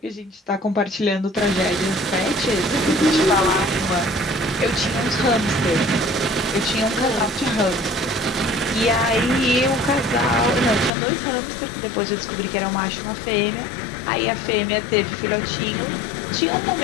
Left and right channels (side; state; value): right; drops out; at 10.9 s